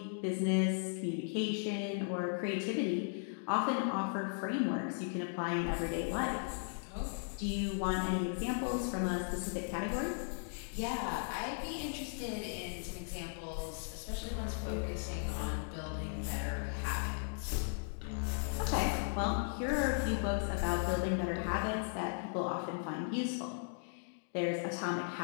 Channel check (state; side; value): silent; right; digital silence